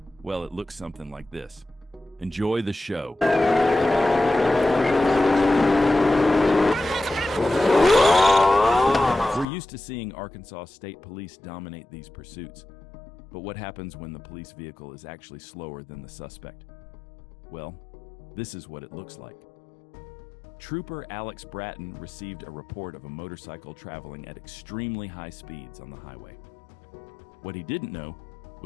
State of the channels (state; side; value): drops out; right; at 9.5 s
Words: Well, it looks something like this. Enjoy the show. We're used to seeing Arkansas State Police dominate these pursuits. But what happens when the police vehicle is actually slower than the suspect? Well, this is what it looks like. Trooper Alex Bratton received a report of a motorcycle traveling at extremely high speeds on the highway. What he didn't know